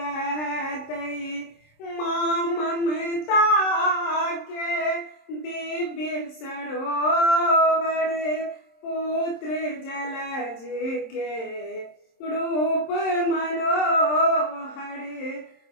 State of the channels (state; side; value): late; right; 26 ms